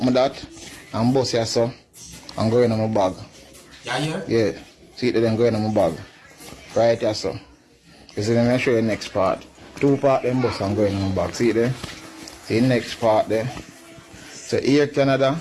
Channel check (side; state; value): both; identical; correlation 1.00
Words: me that and bust here so and go in my bag. Yeah? Yeah. See it then go in my bag. Right here so. You see let me show you the next part. Two part them bust and go in my bag. See it there? See the next part there. So here Canada,